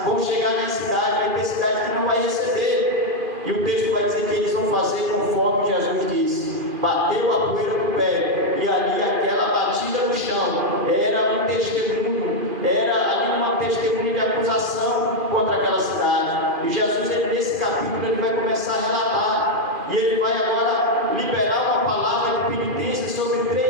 vão chegar na cidade, vai ter cidade que não vai receber. E o texto vai dizer que eles vão fazer conforme Jesus disse. Bateu a poeira no pé, e ali aquela batida no chão era um testemunho, era ali uma testemunha de acusação contra aquela cidade. E Jesus, nesse capítulo, ele vai começar a relatar, e ele vai agora liberar uma palavra de penitência sobre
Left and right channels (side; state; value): left; late; 2.5 ms